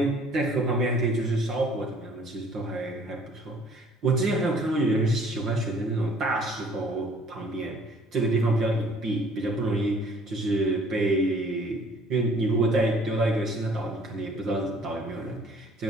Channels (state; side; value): normal; both; correlation 0.56